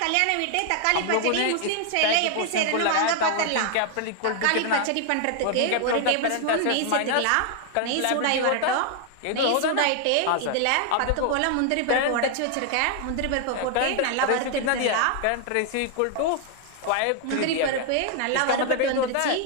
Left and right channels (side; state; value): both; different; correlation 0.00